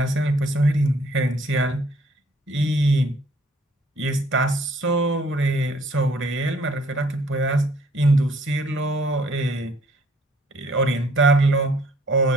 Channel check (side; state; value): both; normal; correlation 0.60